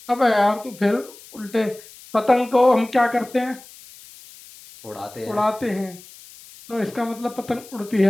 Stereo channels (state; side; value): noise; left; hiss, 20 dB below the sound